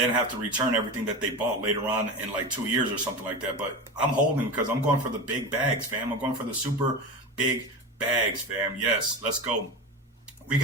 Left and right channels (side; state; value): both; normal; correlation 0.25